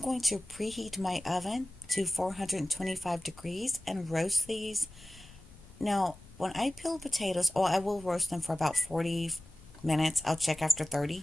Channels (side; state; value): left; noise; rumble, 21 dB below the sound